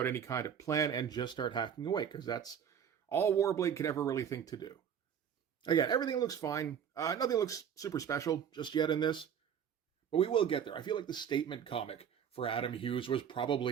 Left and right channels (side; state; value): left; quieter; 8.3 dB